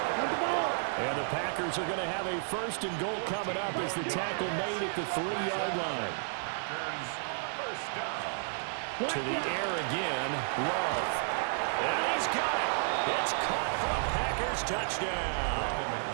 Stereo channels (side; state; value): left; silent; digital silence